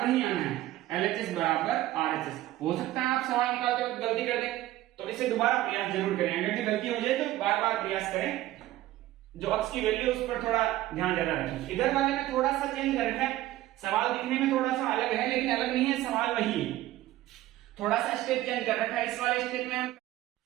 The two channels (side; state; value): left; quieter; 15.3 dB